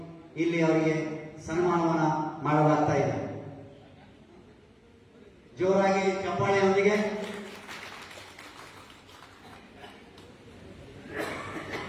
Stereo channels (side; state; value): both; identical; correlation 1.00